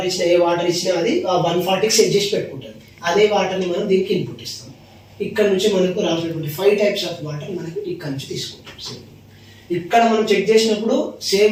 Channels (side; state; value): both; identical; correlation 1.00